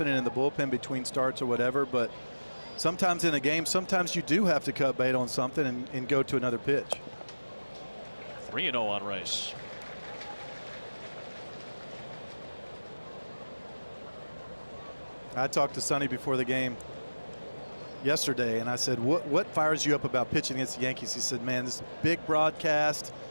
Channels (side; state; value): both; inverted; correlation -1.00